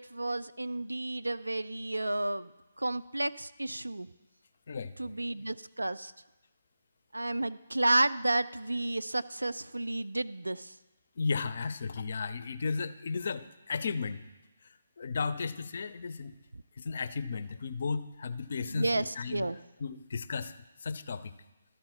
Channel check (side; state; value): both; inverted; correlation -0.92